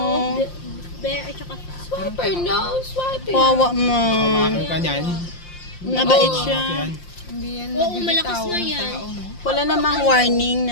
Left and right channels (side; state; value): right; late; 5.7 ms